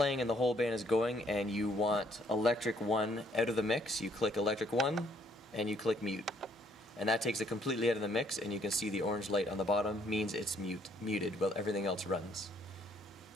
and the whole band is going and you want electric 1 out of the mix, you click electric 1 and you click mute. And that takes it completely out of the mix, and you can see the orange light on the bottom means it's muted while everything else runs.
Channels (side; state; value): both; normal; correlation 0.66